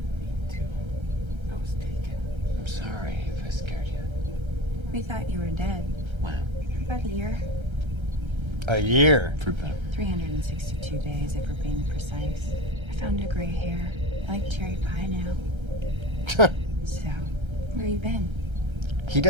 mean to. I was taken. I'm sorry if I scared you. We thought you were dead. Wow. For about a year. A year? For about 362 days, if we're being precise. I found a gray hair. I like cherry pie now. So, where you been? He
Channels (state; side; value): late; left; 1.3 ms